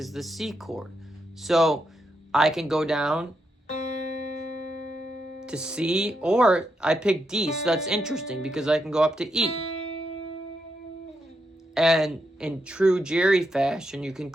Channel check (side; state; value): both; normal; correlation 0.82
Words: the C chord. So I can go down to C, or I pick D, so that's interesting because I can go up to E. And in true Jerry fashion, you can